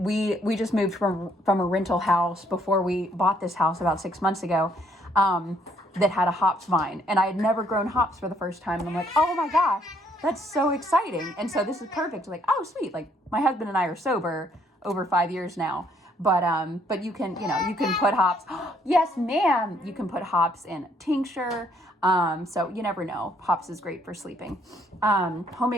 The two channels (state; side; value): normal; both; correlation 0.67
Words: we just moved from a rental house before we bought this house about 6 months ago, that had a hops vine, and I had never grown hops for the first time, and I'm like, oh my gosh, that's so exciting. And so this is perfect. Like, oh sweet, like my husband and I are sober over 5 years now, but you can put hops. Yes, ma'am. You can put hops in tincture. So you never know. Hops is great for sleeping.